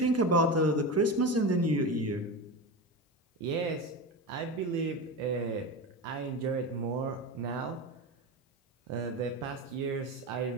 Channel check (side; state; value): both; normal; correlation 0.23